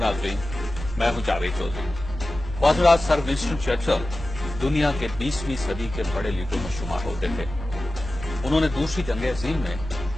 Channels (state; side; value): normal; both; correlation 0.94